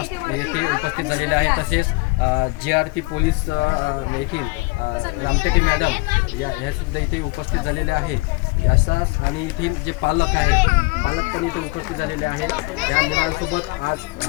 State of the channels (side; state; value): right; quieter; 25.0 dB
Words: येथे उपस्थित झालेले आहेत। तसेच JRP पोलीस येथील रामटेके मॅडम ह्या सुद्धा इथे उपस्थित झालेले आहे। असाच आणि येथील जे पालक पण इथे उपस्थित झालेले आहेत। या मुलांसोबत आज